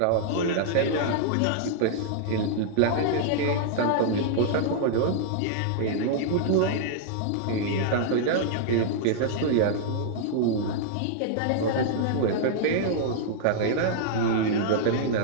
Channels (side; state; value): both; different; correlation -0.01